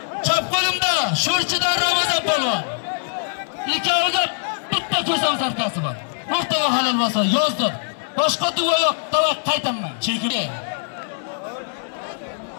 Chap qo'limda Sho'rchidan Ramazon polvon. Ikkoviga bitta ko'sam sarkasi bor. O'rtaga halol bo'lsa yozdim. Boshqa duo yo'q, tavak qaytaman. Chekin.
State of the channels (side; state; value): right; silent; digital silence